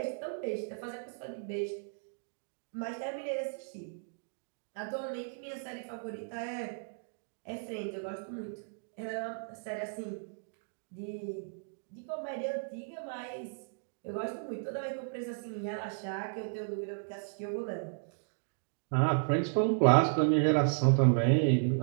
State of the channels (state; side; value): silent; left; digital silence